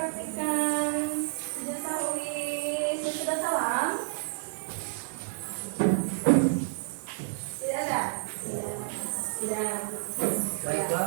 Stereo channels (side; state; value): left; silent; 58 dB below the other